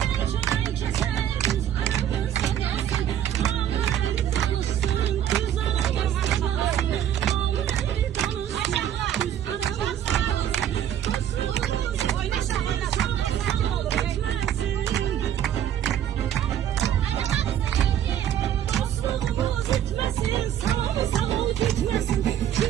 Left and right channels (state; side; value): quieter; left; 10.5 dB